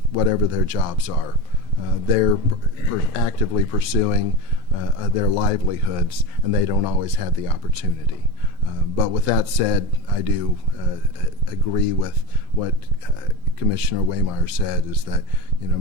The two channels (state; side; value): late; left; 12 ms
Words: whatever their jobs are. They're actively pursuing their livelihoods, and they don't always have the opportunity. But with that said, I do agree with what Commissioner Waymire said, is that